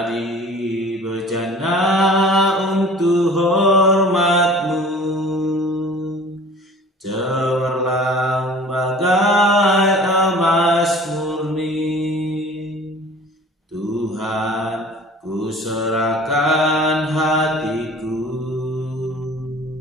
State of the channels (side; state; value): both; normal; correlation 0.45